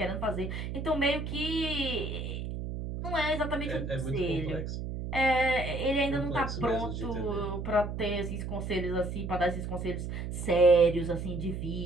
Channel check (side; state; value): right; noise; hum, 5 dB below the sound